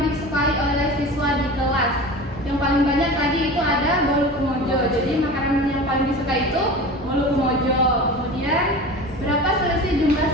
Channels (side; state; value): both; normal; correlation 0.34